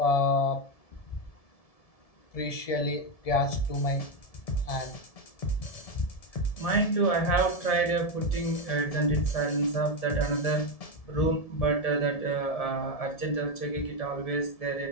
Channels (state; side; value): late; right; 1.7 ms